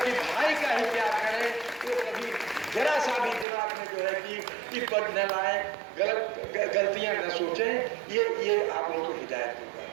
भाई का ही प्यार करें, वो कभी जरा सा भी दिमाग में जो है कि पद न लाए, गलतियां न सोचें। ये आप लोगों को हिदायत दूंगा।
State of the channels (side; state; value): left; drops out; at 3.5 s